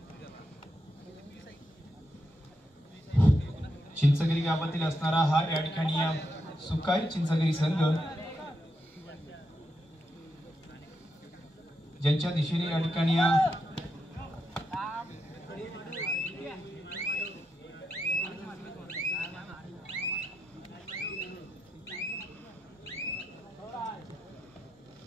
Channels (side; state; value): both; normal; correlation 0.83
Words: चिंचगिरी गावातील असणारा हा या ठिकाणी सुकाई चिंचगिरी संघ ज्यांच्या दिशेने या ठिकाणी